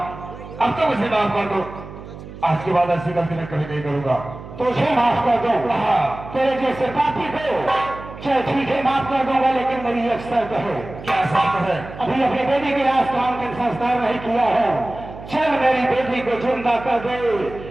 अब तो मुझे माफ कर दो। आज के बाद ऐसी गलती मैं कभी नहीं करूंगा। तुझे माफ कर दूं? तेरे जैसे पापी को चल ठीक है, माफ कर दूंगा, लेकिन मेरी एक शर्त है। क्या शर्त है? अभी अपनी बेटी के लाश का अंतिम संस्कार नहीं किया है। चल मेरी बेटी को जिंदा कर दे,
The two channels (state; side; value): noise; right; hum, 14 dB below the sound